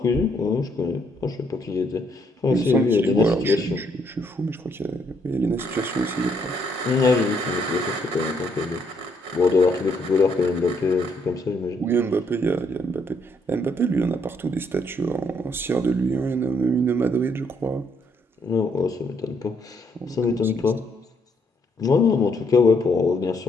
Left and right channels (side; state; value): both; normal; correlation 0.72